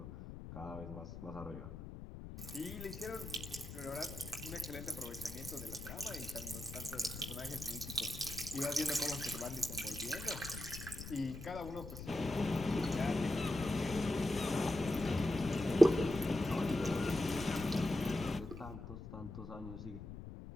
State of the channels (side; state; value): left; noise; rumble, 10 dB below the sound